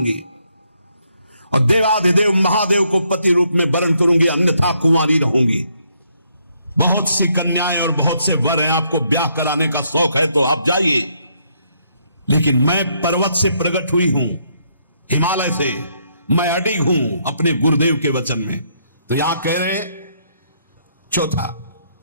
और देवाधिदेव महादेव को पति रूप में वरण करूंगी, अन्यथा कुंवारी रहूंगी। बहुत सी कन्याएं और बहुत से वर हैं, आपको ब्याह कराने का शौक है तो आप जाइए, लेकिन मैं पर्वत से प्रकट हुई हूं, हिमालय से, मैं अडिग हूं अपने गुरुदेव के वचन में। तो यहां कह रहे चौथा,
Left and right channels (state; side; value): inverted; both; correlation -0.72